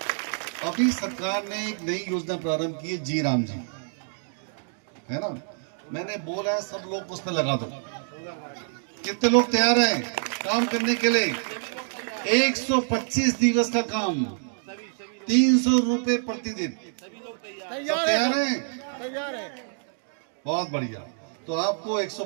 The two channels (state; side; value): silent; left; digital silence